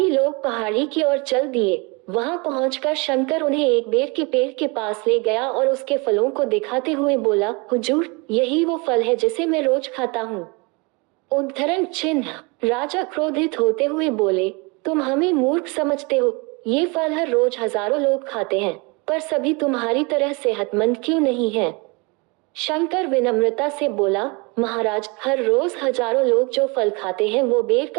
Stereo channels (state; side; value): quieter; left; 28.8 dB